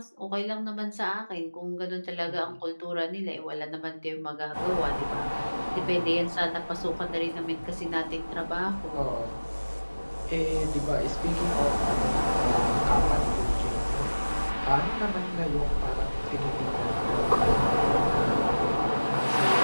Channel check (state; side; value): inverted; both; correlation -1.00